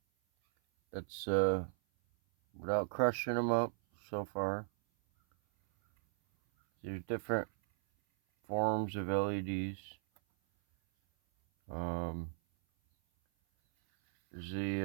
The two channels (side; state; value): left; silent; 53 dB below the other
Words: That's without crushing them up so far. There's different forms of LEDs. There's